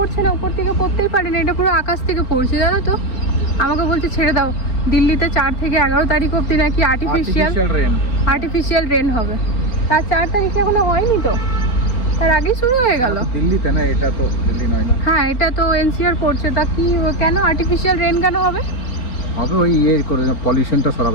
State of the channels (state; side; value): late; right; 4.4 ms